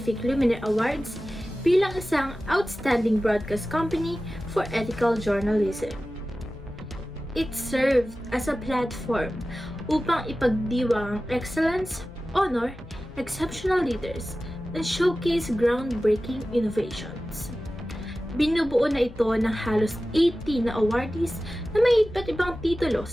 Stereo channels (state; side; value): noise; left; hum, 18 dB below the sound